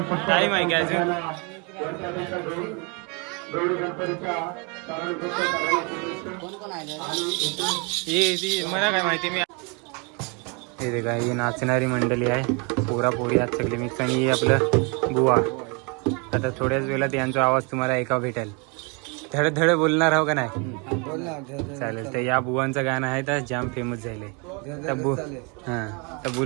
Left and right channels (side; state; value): left; quieter; 32.6 dB